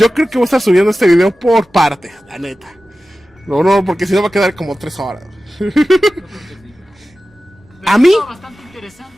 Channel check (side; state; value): both; normal; correlation 0.95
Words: creo que voy a estar subiendo este video por partes, la neta. No, porque si no va a quedar como 3 horas. Pero A mí, estuvo bastante